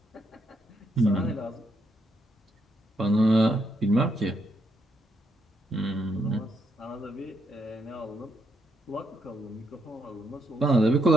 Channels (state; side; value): normal; both; correlation 0.77